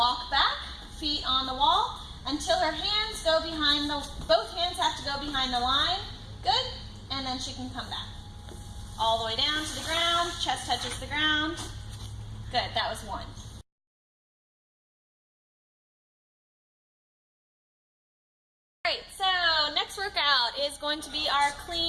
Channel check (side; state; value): both; identical; correlation 1.00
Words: back, feet on the wall, until her hands go behind both hands have to go behind the line. Good. And then she can come back. All the way down to the ground, chest touches the ground. Good, that was 1. Alright, so next workout is going to be our